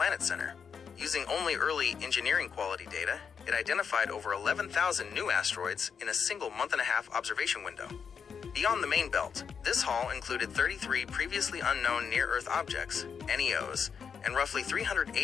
Center. Using only early engineering quality data, it identified over 11,000 new asteroids in a single month-and-a-half observation window. Beyond the main belt, this haul included 33 previously unknown near-Earth objects, NEOs, and roughly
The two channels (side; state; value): right; quieter; 6.6 dB